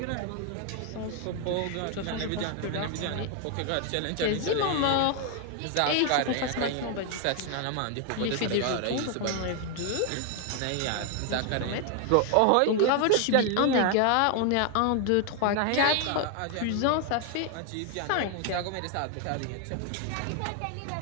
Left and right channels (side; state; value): both; different; correlation 0.00